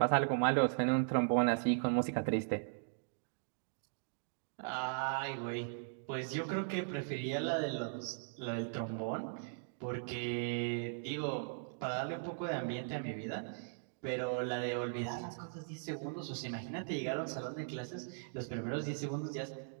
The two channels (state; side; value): silent; left; digital silence